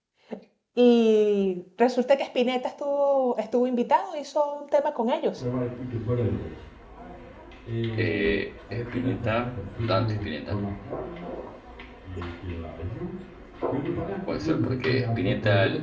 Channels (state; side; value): identical; both; correlation 1.00